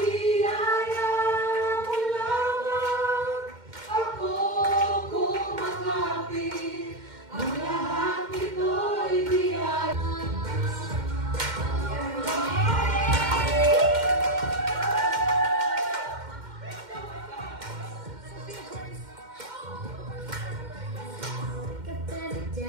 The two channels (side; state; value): left; late; 2.1 ms